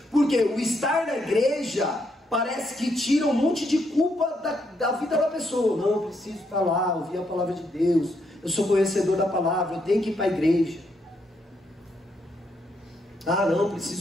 porque o estar na igreja parece que tira um monte de culpa da vida da pessoa. Não, eu preciso estar lá, ouvir a palavra de Deus, eu sou conhecedor da palavra, eu tenho que ir para a igreja. Ah, não,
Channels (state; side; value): normal; both; correlation 0.77